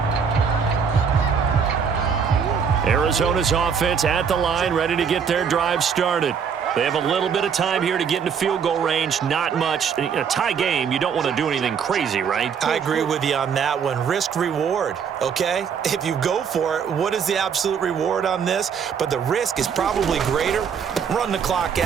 Arizona's offense at the line, ready to get their drive started. They have a little bit of time here to get into field goal range, not much. In a tie game, you don't want to do anything crazy, right? I agree with you on that one. Risk reward, okay? If you go for it, what is the absolute reward on this? But the risk is probably greater. Run the clock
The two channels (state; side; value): quieter; left; 6.8 dB